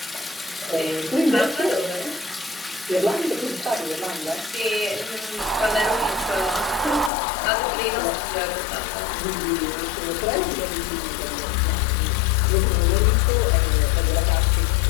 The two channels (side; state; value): right; drops out; at 7.1 s